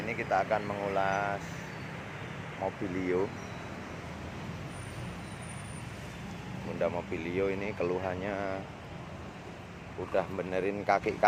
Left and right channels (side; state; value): both; identical; correlation 1.00